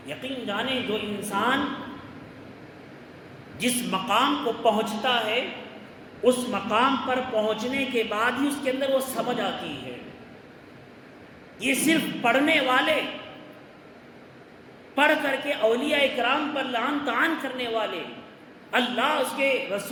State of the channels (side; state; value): both; identical; correlation 1.00